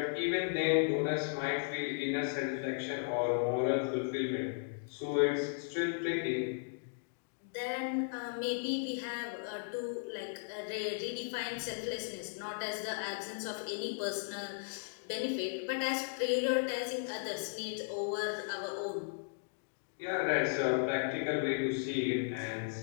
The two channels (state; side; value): silent; right; digital silence